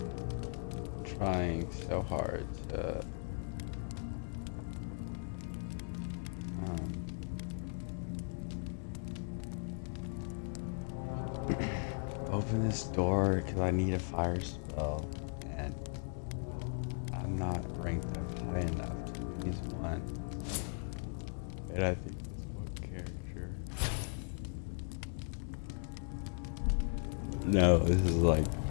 Trying so hard to open this door because I need a fire spell, and I'm not ranked up high enough to use one. And I think this one character. No, this is like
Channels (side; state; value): right; silent; 53 dB below the other